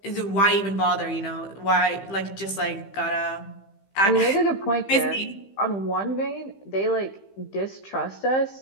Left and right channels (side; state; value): right; late; 15 ms